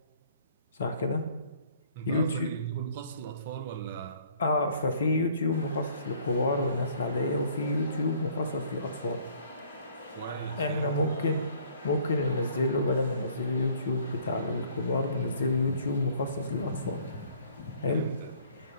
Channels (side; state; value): both; inverted; correlation -0.57